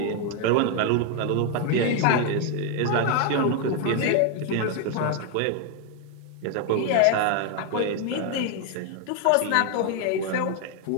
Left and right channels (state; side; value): different; both; correlation 0.01